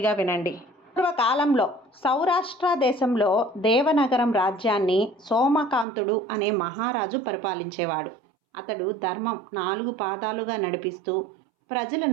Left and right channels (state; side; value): drops out; left; at 5.9 s